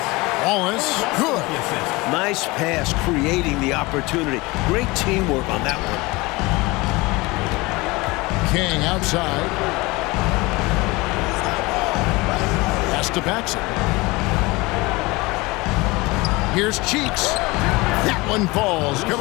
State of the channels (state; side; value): quieter; right; 23.1 dB